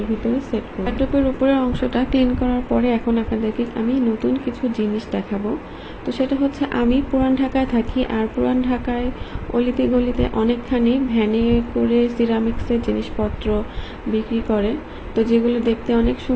ভিতরে সেট করব। টবের উপরের অংশটা ক্লিন করার পরে এখন আপনাদেরকে আমি নতুন কিছু জিনিস দেখাবো। তো সেটা হচ্ছে, আমি পুরান ঢাকায় থাকি, আর পুরান ঢাকায় অলিতে গলিতে অনেকখানি ভ্যানে করে সিরামিক্সের জিনিসপত্র বিক্রি করে। তো যেগুলো দেখতে অনেক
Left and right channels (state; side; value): identical; both; correlation 1.00